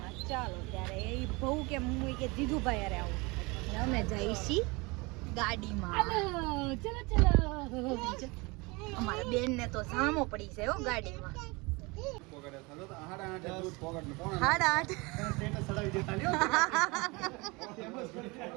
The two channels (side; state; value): left; quieter; 25.9 dB